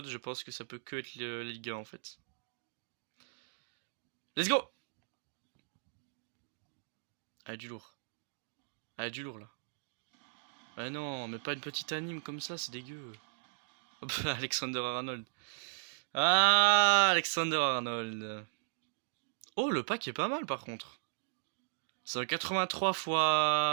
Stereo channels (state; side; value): silent; left; digital silence